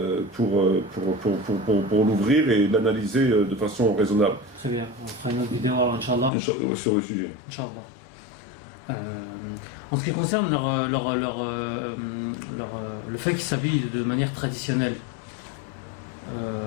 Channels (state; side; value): drops out; right; at 6.3 s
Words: pour l'ouvrir et l'analyser de façon raisonnable. C'est bien, on fera une autre vidéo, Inch'Allah. Sur le sujet. Inch'Allah. En ce qui concerne le fait qu'ils s'habillent de manière traditionnelle,